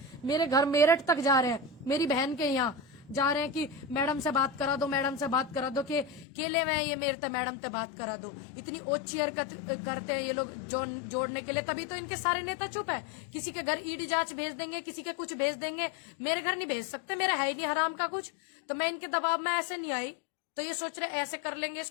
मेरे घर मेरठ तक जा रहे हैं, मेरी बहन के यहाँ जा रहे हैं कि मैडम से बात करा दो, मैडम से बात करा दो, के केले में ये मेरे मैडम से बात करा दो। इतनी ओछी हरकत करते हैं ये लोग जोड़ने के लिए, तभी तो इनके सारे नेता चुप है। किसी के घर ईडी जांच भेज देंगे, किसी के कुछ भेज देंगे, मेरे घर नहीं भेज सकते, मेरा है ही नहीं हराम का कुछ। तो मैं इनके दबाव में ऐसे नहीं आई, तो ये सोच रहे ऐसे कर लेंगे,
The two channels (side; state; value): right; drops out; at 6.2 s